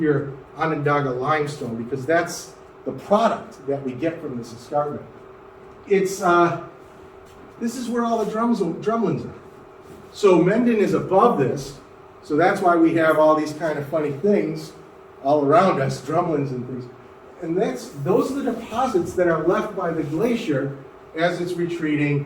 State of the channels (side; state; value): both; identical; correlation 1.00